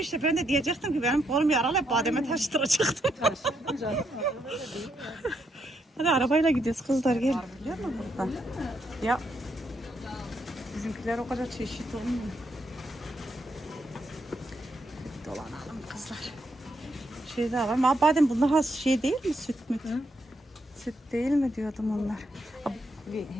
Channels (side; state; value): both; normal; correlation 0.78